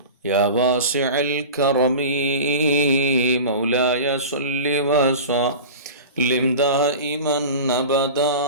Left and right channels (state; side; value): inverted; both; correlation -0.33